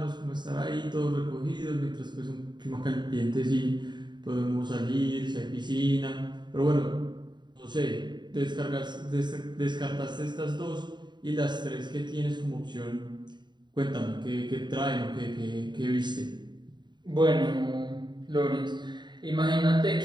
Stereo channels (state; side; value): late; left; 0.22 ms